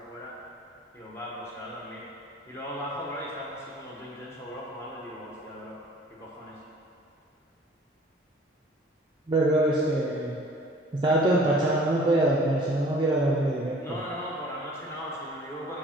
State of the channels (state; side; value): normal; both; correlation 0.51